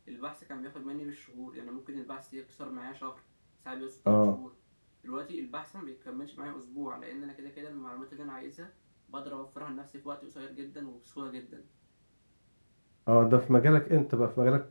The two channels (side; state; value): both; inverted; correlation -1.00